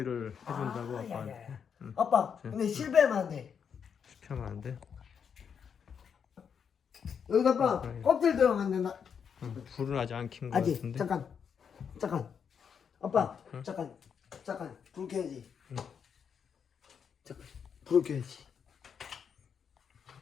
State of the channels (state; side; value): quieter; right; 7.1 dB